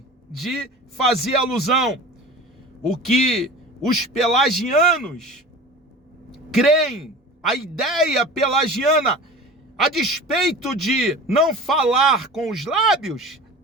de fazer alusão, o que os pelagianos creem, a ideia pelagiana, a despeito de não falar com os lábios,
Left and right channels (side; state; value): both; normal; correlation 0.37